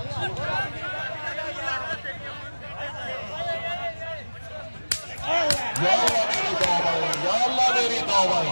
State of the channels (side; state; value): both; inverted; correlation -1.00